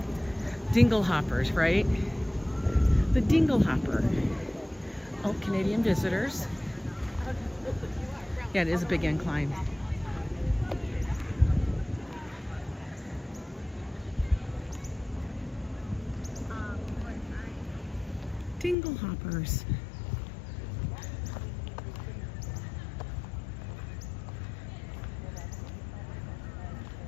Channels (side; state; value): right; drops out; at 18.8 s